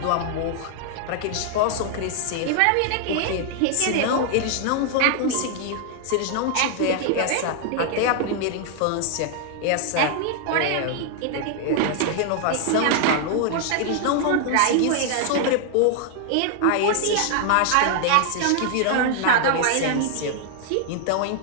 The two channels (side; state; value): both; different; correlation 0.00